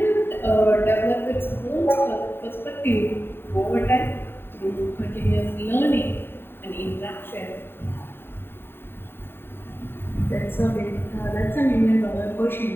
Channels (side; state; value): right; late; 0.11 ms